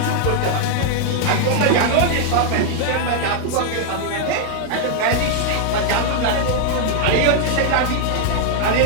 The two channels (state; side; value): different; both; correlation 0.00